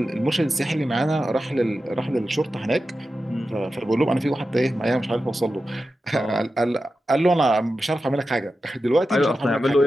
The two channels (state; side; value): normal; both; correlation 0.92